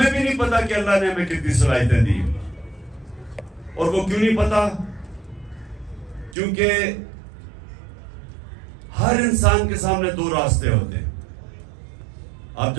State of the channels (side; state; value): left; drops out; at 6.4 s